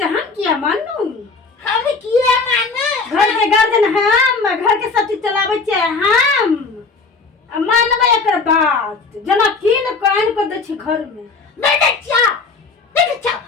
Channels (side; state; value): right; quieter; 4.2 dB